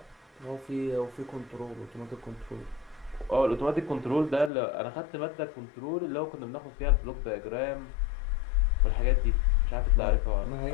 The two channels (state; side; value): drops out; right; at 4.5 s